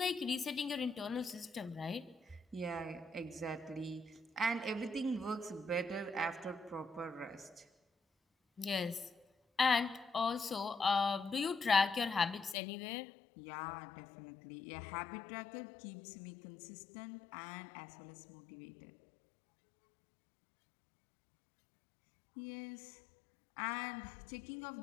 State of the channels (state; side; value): drops out; right; at 12.6 s